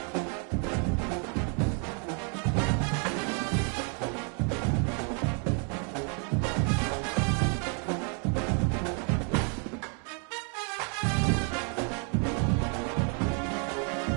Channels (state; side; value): quieter; left; 39.6 dB